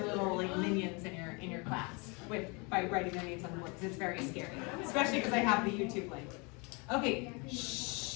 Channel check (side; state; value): right; quieter; 30.5 dB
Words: little like minions in your class by writing their names on the board, because it's very scary, especially because I have the YouTube link. Okay,